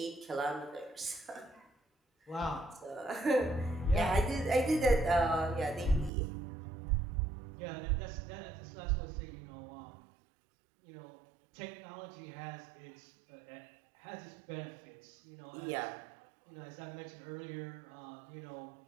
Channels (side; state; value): left; drops out; at 6.1 s